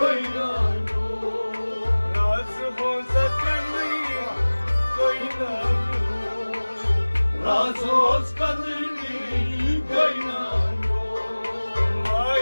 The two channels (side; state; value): both; inverted; correlation -1.00